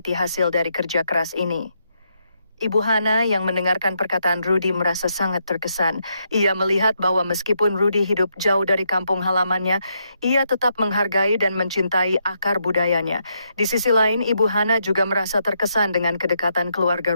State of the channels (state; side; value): inverted; both; correlation -0.79